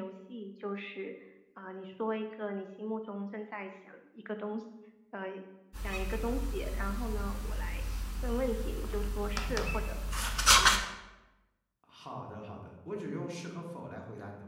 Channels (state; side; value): identical; both; correlation 1.00